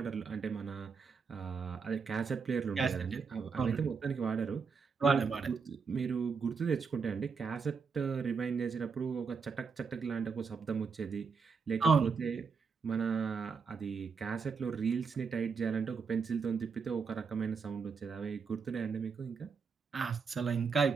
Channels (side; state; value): left; quieter; 5.5 dB